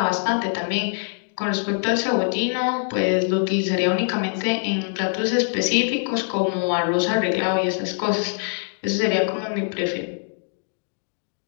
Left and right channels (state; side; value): silent; right; 63 dB below the other